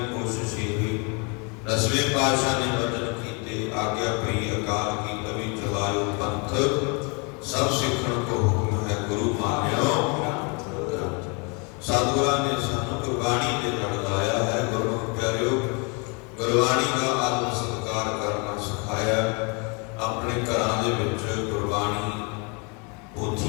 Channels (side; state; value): right; quieter; 33.2 dB